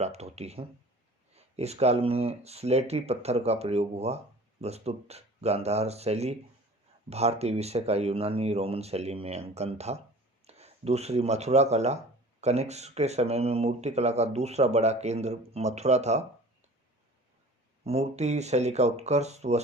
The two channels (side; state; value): both; normal; correlation 0.44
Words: होती हैं। इस काल में स्लेटी पत्थर का प्रयोग हुआ। वस्तुत गांधार शैली भारतीय विषय का यूनानी रोमन शैली में अंकन था। दूसरी मथुरा कला, कनिष्क के समय में मूर्ति कला का दूसरा बड़ा केंद्र मथुरा था। मूर्ति शैली का उत्कर्ष